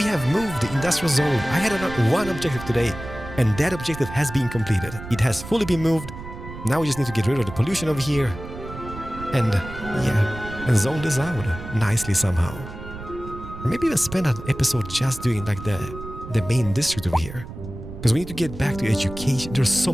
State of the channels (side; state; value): right; noise; rumble, 12 dB below the sound